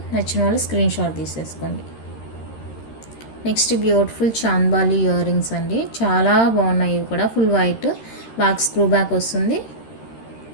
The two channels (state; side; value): late; right; 13 ms